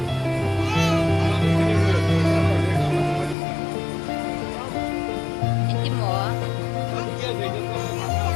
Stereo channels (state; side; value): drops out; right; at 3.4 s